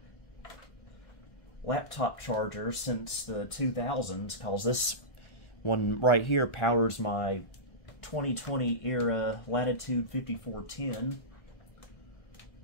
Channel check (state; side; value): late; right; 1.5 ms